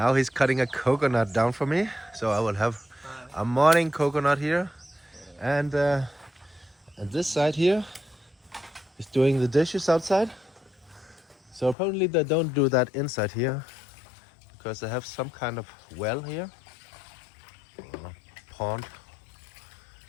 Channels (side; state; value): right; drops out; at 11.8 s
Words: he's cutting a coconut down for me, so I will have a morning coconut here, and this side here is doing the dishes outside. So apparently they don't do that inside here, because they have some kind of well here, or pond,